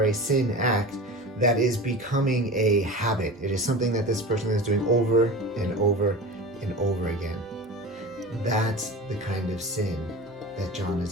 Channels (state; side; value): normal; both; correlation 0.32